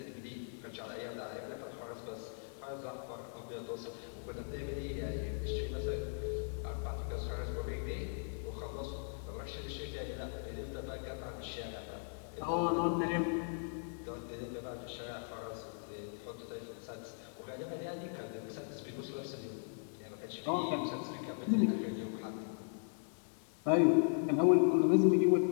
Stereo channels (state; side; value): silent; right; digital silence